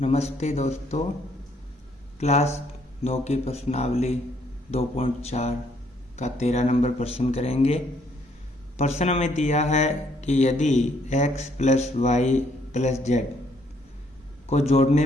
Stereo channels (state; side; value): normal; both; correlation 0.68